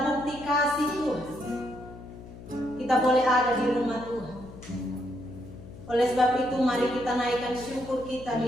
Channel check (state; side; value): noise; left; hum, 16 dB below the sound